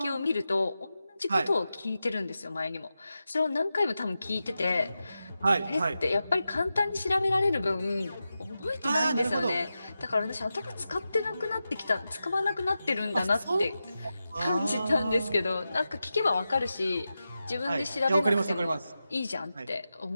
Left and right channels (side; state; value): both; inverted; correlation -0.91